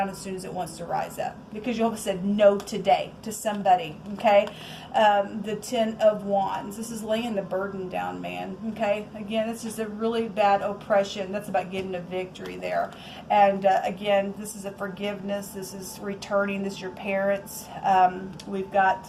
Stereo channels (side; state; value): both; identical; correlation 1.00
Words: as soon as it wants to rise up. Because Jehovah said no today to somebody, okay? The 10 of Wands. This is laying the burden down, man, okay? Again, it's just a really bad oppression. That's about getting a victory there. And again, this is a forgiveness. This is returning. This is your parents. We've